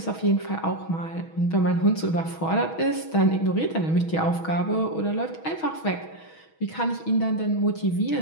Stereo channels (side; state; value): right; late; 6.2 ms